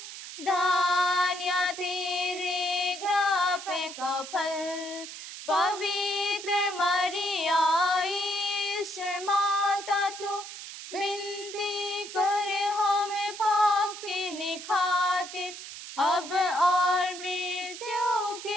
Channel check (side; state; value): right; noise; hiss, 11 dB below the sound